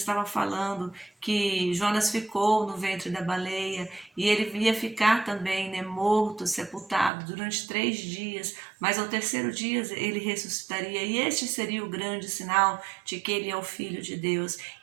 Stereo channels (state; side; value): drops out; left; at 7.1 s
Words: falando que Jonas ficou no ventre da baleia e ele ia ficar também, né, morto, sepultado durante 3 dias, mas ao terceiro dia ele ressuscitaria, e este seria o grande sinal de que ele é o Filho de Deus.